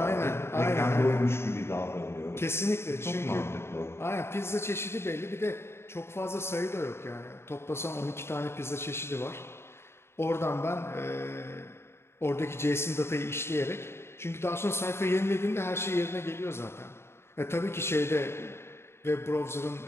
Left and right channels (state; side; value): late; right; 0.12 ms